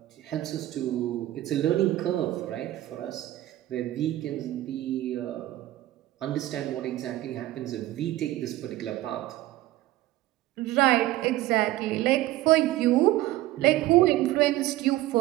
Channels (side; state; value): left; quieter; 15.7 dB